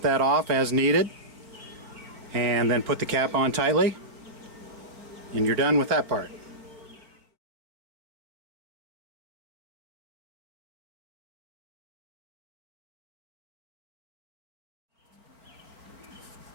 that off as needed, and then put the cap on tightly, and you're done with that part.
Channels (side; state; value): left; late; 4.3 ms